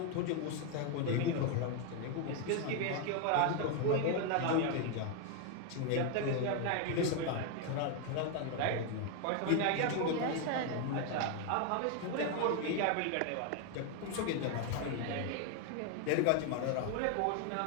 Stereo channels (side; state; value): both; different; correlation 0.01